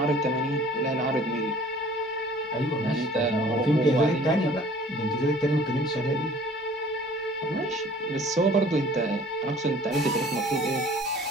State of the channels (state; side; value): normal; both; correlation 0.51